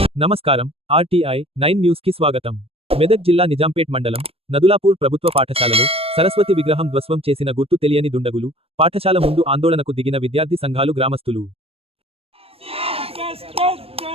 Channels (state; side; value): late; left; 0.28 ms